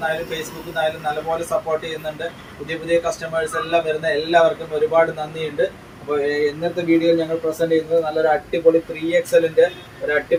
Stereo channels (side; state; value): both; identical; correlation 1.00